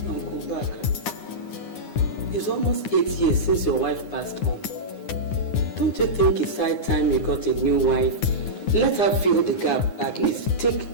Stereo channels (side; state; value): right; late; 9.7 ms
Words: Uncle Ubaka, it's almost 8 years since your wife passed on. Don't you think it's high time you got a new wife? Let her fill the gap, at least